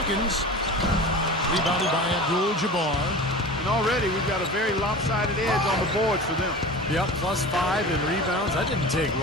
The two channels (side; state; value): both; normal; correlation 0.34